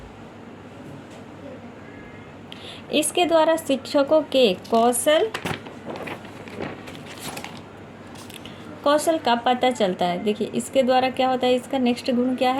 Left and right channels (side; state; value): both; identical; correlation 1.00